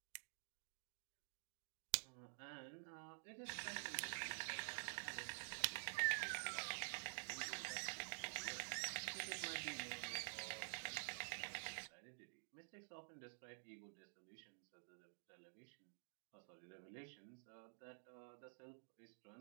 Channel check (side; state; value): left; silent; digital silence